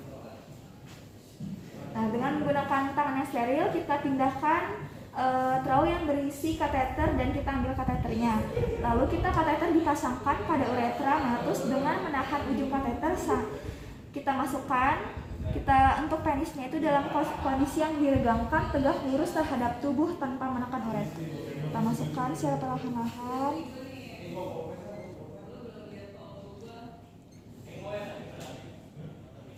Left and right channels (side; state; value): both; identical; correlation 1.00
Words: Nah, dengan menggunakan tangan yang steril kita pindahkan trau yang berisi kateter dan kita ambil kateternya. Lalu kateter dipasangkan pada uretra meatus dengan menahan ujung kateter. Kita masukkan. Untuk penisnya itu dalam kondisi yang diregangkan, tegak lurus terhadap tubuh tanpa menekan uretra. Kita masukkan secara perlahan-lahan.